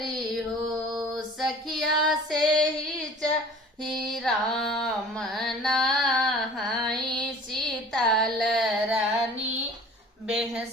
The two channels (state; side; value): normal; both; correlation 0.46